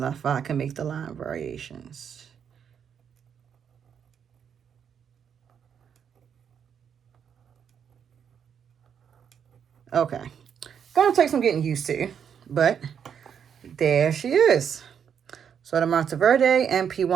if I can make the line variations. Okay. Gonna take some getting used to, but there she is. So the Monteverde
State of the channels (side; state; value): left; quieter; 7.8 dB